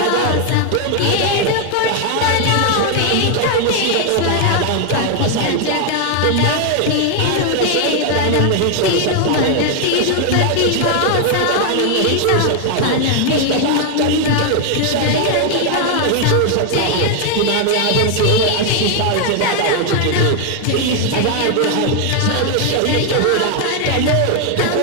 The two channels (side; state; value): both; different; correlation 0.00